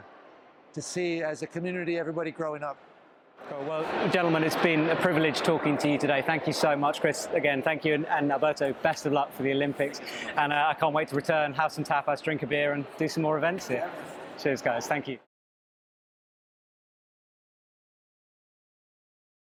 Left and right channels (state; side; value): identical; both; correlation 1.00